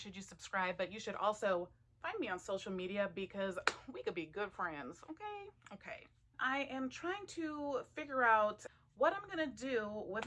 you subscribe, but you should also find me on social media because we could be good friends, okay? Okay. I am trying to figure out what I'm gonna do with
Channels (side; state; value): both; identical; correlation 1.00